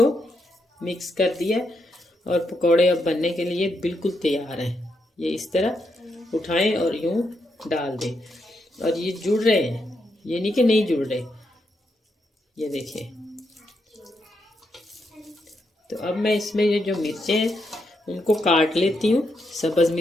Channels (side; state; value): both; normal; correlation 0.81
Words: मिक्स कर दिया और पकौड़े अब बनने के लिए बिल्कुल तैयार हैं। ये इस तरह उठाएं और यूं डाल दें और ये जुड़ रहे हैं, ये नहीं कि नहीं जुड़ रहे, ये देखिए। तो अब मैं इसमें ये जो मिर्चें हैं उनको काट लेती हूँ, सब्ज़